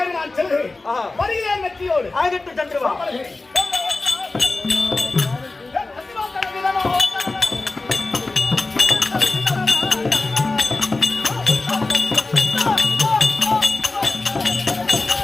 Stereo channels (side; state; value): right; quieter; 3.3 dB